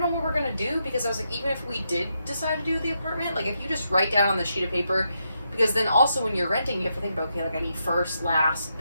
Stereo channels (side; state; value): both; inverted; correlation -0.82